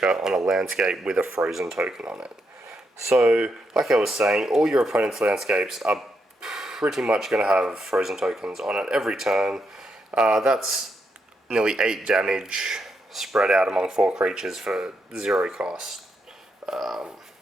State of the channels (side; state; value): both; normal; correlation 0.81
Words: on a landscape with a frozen token on it. So, like I was saying, all your opponent's landscapes are pretty much going to have frozen tokens on it every turn. That's nearly 8 damage spread out among 4 creatures for 0 cost.